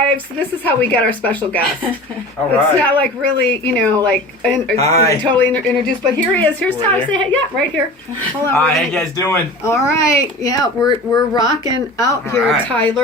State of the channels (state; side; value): normal; both; correlation 0.37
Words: So this is how we get our special guest. All right. It's not like really, totally introduced. But here he is. Here's Tyler. Say hey. Yeah, right here. Hold on. Hi, how you guys doing? All right. Yeah, we're rocking out here, right.